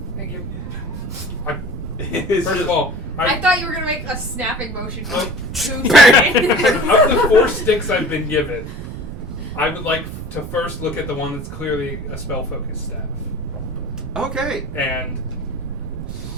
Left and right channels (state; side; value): noise; right; rumble, 8 dB below the sound